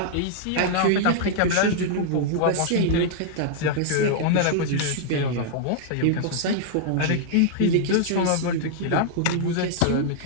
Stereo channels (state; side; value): different; both; correlation -0.01